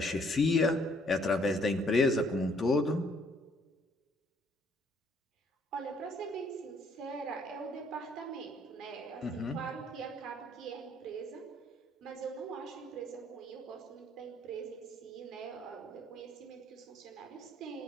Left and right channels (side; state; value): both; normal; correlation 0.64